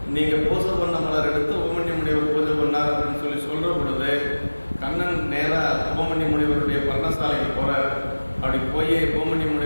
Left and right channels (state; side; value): inverted; both; correlation -1.00